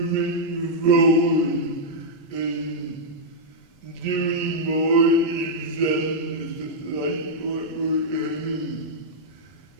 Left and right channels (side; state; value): both; normal; correlation -0.06